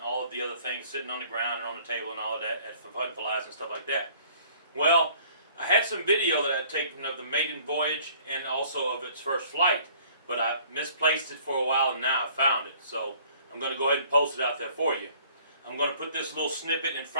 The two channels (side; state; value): both; inverted; correlation -0.55